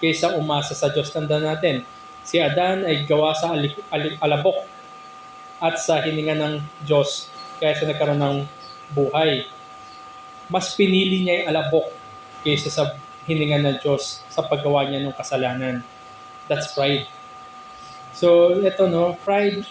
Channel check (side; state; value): both; identical; correlation 1.00